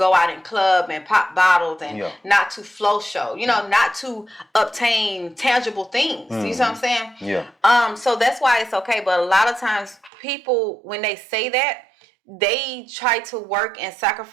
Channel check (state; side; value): drops out; left; at 10.1 s